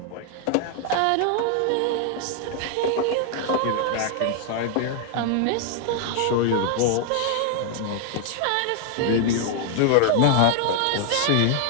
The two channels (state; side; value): different; both; correlation 0.00